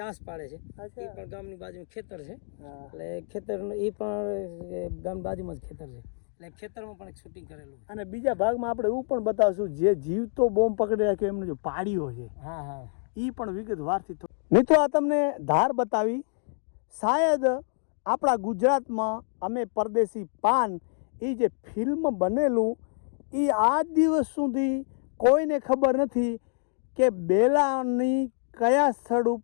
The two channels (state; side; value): silent; right; 60 dB below the other